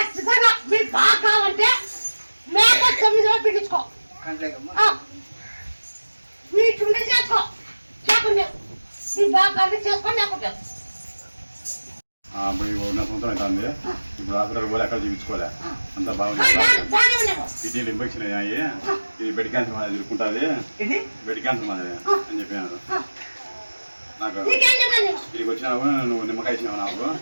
మీరు బాగా కావాలంటే మేక 9 రోజులు పిండించుకో, వీటి చేసుకో, లేకుండా నీ బాగా చేసుకోండి. లేకుండా ఇప్పుడు ఉన్న సంవత్సరం అవుతుంది. ఇప్పుడు హాస్పిటల్ పోలే, ఎక్కడ చూపించుకోలే, అంతా బాగుంది. కిడ్నీలు ఇన్ఫెక్షన్ అయ్యాయి, ఇది బెడ్ క్యాన్సర్ మాదిరి తిరుగుకుంటుంది, బెడ్ క్యాన్సర్ మాదిరి అని చెప్పినారు నాకు. ఇక్కడికి వచ్చినావు, నువ్వు నిమ్మకాయ ఇచ్చినావు నాకు.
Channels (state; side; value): inverted; both; correlation -1.00